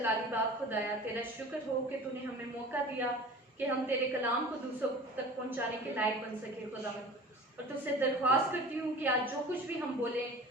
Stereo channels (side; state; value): both; normal; correlation 0.40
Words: बाप खुदाया, तेरा शुक्र हो कि तूने हमें मौका दिया कि हम तेरे कलाम को दूसरों तक पहुंचाने के लायक बन सके खुदावन। और तुझसे दरख्वास्त करती हूँ कि आज जो कुछ भी हम बोले